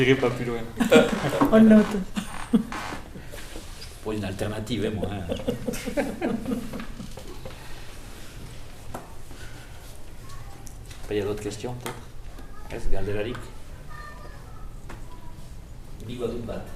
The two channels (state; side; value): identical; both; correlation 1.00